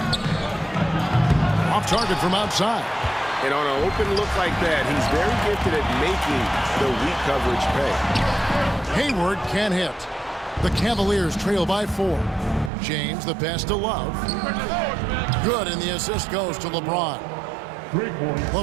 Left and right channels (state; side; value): drops out; left; at 12.7 s